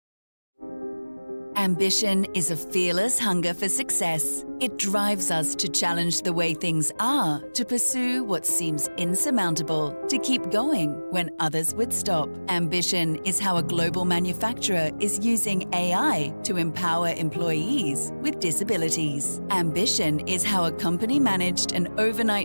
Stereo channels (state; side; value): inverted; both; correlation -1.00